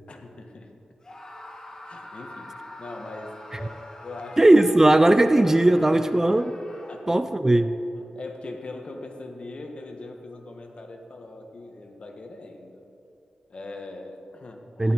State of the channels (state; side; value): normal; both; correlation 0.98